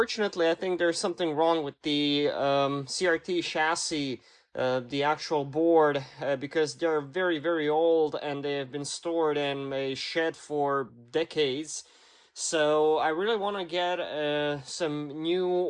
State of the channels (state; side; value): identical; both; correlation 1.00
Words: I think there's something wrong with the CRT chassis, the actual board, because they're very, very old and they have been stored in a shed for decades. So I really want to get some new